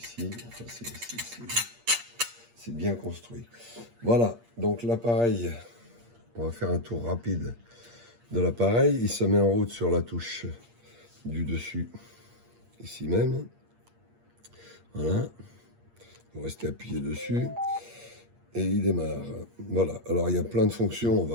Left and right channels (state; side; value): late; left; 8.6 ms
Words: Enfin, c'est bien construit. Voilà, donc l'appareil, on va faire un tour rapide de l'appareil. Il se met en route sur la touche du dessus, ici même. Voilà, vous restez appuyé dessus. Et il démarre. Voilà, alors il y a plein de fonctions. On